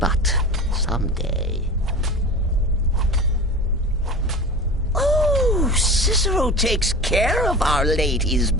someday... Oh, Cicero takes care of Our Lady's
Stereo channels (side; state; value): both; normal; correlation 0.33